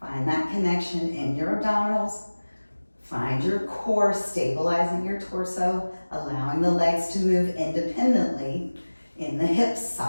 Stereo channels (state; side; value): inverted; both; correlation -1.00